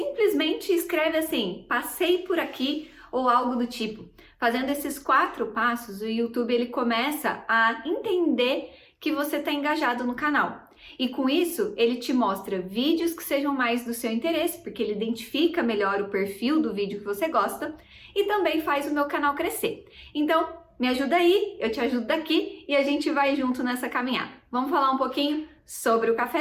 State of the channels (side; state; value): both; identical; correlation 1.00